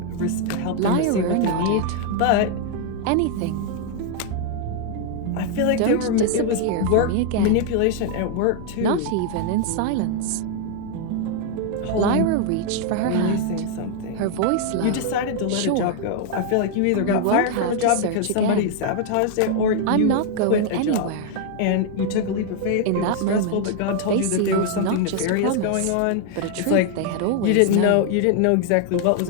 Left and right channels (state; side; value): different; both; correlation 0.00